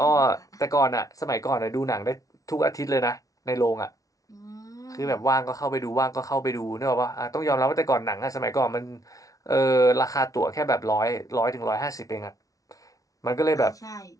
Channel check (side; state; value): right; late; 0.17 ms